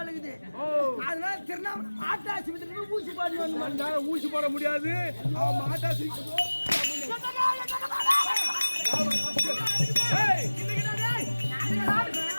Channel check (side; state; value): both; inverted; correlation -1.00